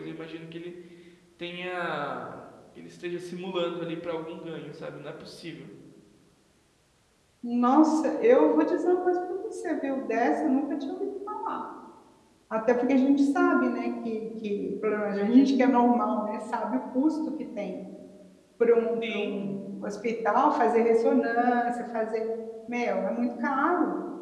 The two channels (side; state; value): both; identical; correlation 1.00